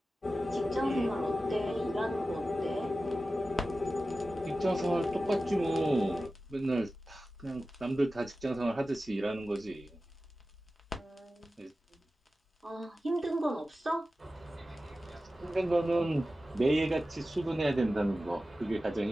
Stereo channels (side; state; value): both; normal; correlation 0.94